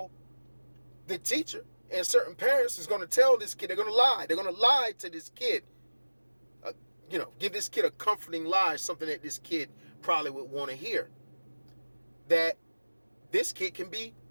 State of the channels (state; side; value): inverted; both; correlation -1.00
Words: the teacher and certain parents is going to tell this kid, they're going to lie to this kid give this kid a comforting lie, something that this kid probably would want to hear. That this kid can be